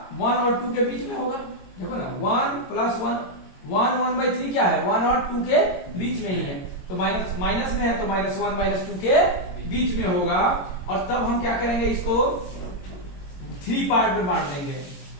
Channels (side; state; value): right; late; 22 ms